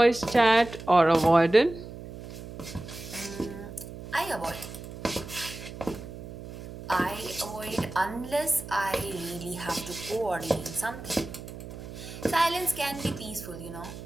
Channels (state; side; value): noise; right; hum, 12 dB below the sound